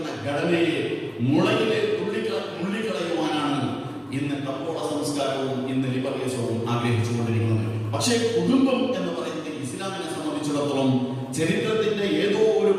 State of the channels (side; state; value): both; identical; correlation 1.00